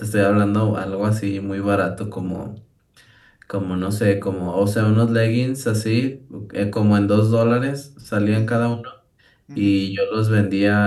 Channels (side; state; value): both; identical; correlation 1.00